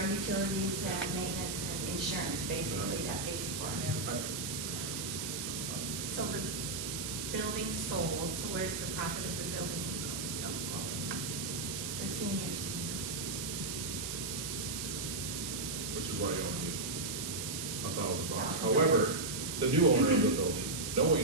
utilities and maintenance and insurance, basically, that pays for. So the building sold, so where's the profit of the building going? The seniors. Which is why you only need $1,000. $1,000. However, the new owner of the building,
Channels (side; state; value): right; noise; hiss, 4 dB below the sound